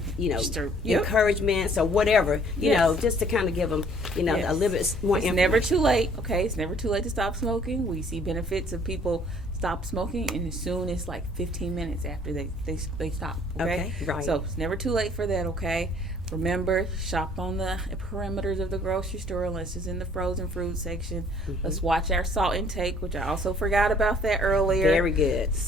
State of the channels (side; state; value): both; normal; correlation 0.58